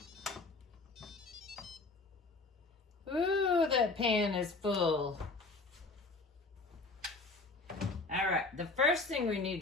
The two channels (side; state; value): right; quieter; 3.6 dB